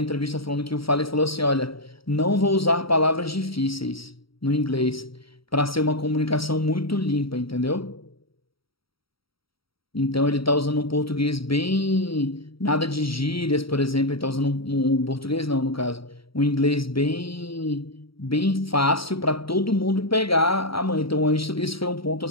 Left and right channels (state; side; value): late; right; 0.75 ms